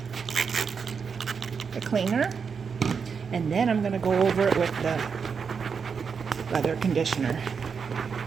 the cleaner, and then I'm going to go over it with the leather conditioner.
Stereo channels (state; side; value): quieter; left; 6.0 dB